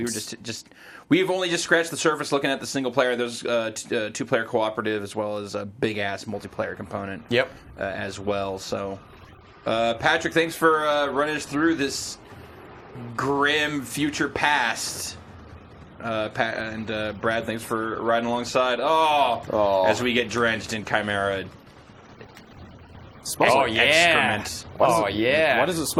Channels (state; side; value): identical; both; correlation 1.00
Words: were we've only just scratched the surface looking at the single player. There's two-player cooperative as well as a big-ass multiplayer component. Yep. As well. So, Patrick, thanks for running us through this grim future past. And Brad, thanks for riding alongside. As we get drenched in Chimera. Smells like excrement. Why does it